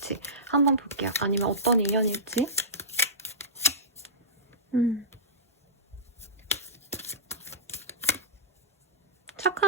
한번 볼게요. 아니면 어떤 인연일지.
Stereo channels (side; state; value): both; normal; correlation -0.18